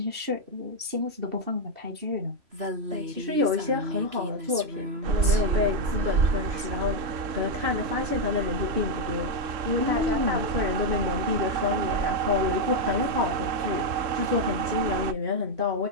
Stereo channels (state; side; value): late; left; 3.0 ms